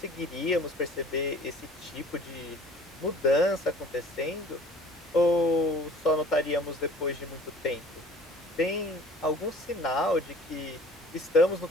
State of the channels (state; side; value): normal; both; correlation 0.48